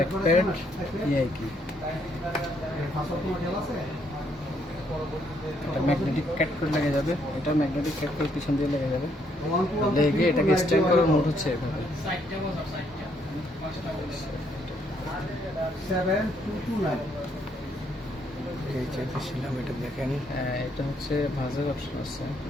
প্যাড, এই কি ম্যাগনেটিক ক্যাট করে লেগে যাবে, এটা ম্যাগনেটিক ক্যাট করে পিছন দিয়ে লেগে যাবে, লেগে এটাকে স্ট্যান্ড করার মোড হচ্ছে এভাবে। 7229 এই চেপেছিলাম, এটা দেখেন। এটা হচ্ছে ভাজের অপশন আছে,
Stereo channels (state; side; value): normal; both; correlation 0.71